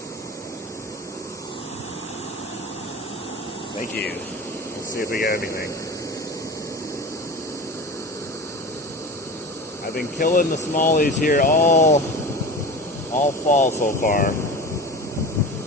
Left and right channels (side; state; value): both; normal; correlation 0.32